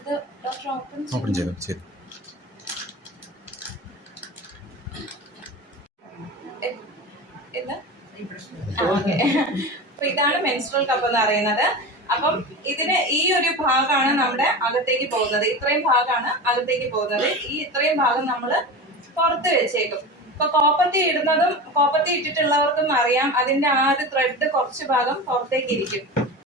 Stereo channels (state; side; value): normal; both; correlation 0.28